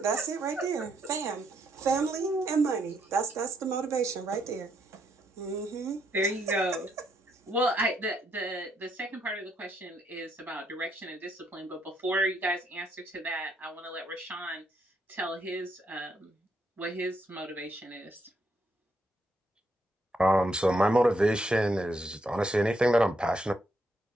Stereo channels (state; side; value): normal; both; correlation 0.76